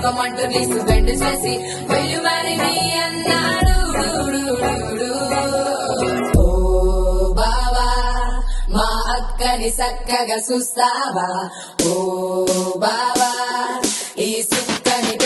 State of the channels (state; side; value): identical; both; correlation 1.00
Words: నీసు బెండ్ చేసి వెళ్ళు మరి నీ అన్నాడు. ఓ బావా మా అక్కని చక్కగా చూస్తావా, ఓ బావా ఈ సుక్కని